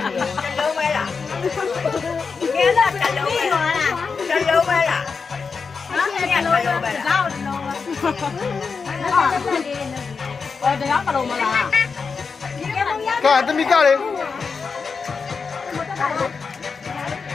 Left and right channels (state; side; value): quieter; right; 5.2 dB